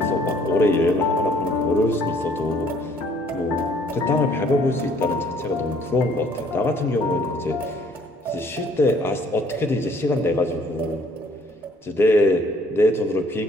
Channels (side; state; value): both; normal; correlation 0.60